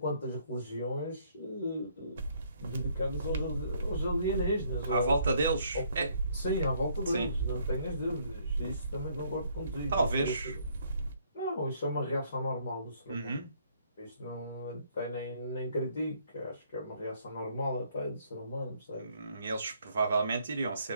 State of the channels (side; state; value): both; inverted; correlation -0.66